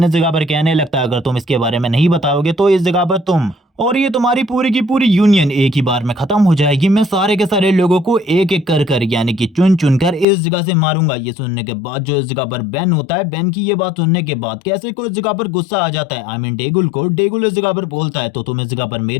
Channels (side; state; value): right; drops out; at 10.2 s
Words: इस जगह पर कहने लगता है अगर तुम इसके बारे में नहीं बताओगे तो इस जगह पर तुम और ये तुम्हारी पूरी की पूरी यूनियन एक ही बार में खत्म हो जाएगी। मैं सारे के सारे लोगों को एक एक कर यानी कि चुन चुन कर इस जगह से मारूंगा। ये सुनने के बाद इस जगह पर बेन होता है, बेन की ये बात सुनने के बाद कैसे को इस जगह पर गुस्सा आ जाता है। आई मीन डेगुल को। डेगुल इस जगह पर बोलता है तो तुम इस जगह पर